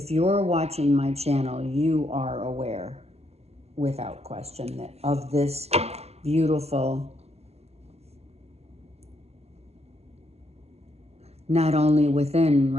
you're watching my channel, you are aware. without question, that of this beautiful, not only within,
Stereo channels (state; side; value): late; left; 0.30 ms